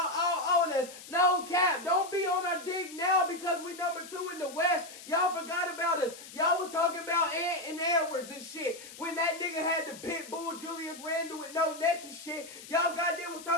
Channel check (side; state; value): left; noise; hiss, 15 dB below the sound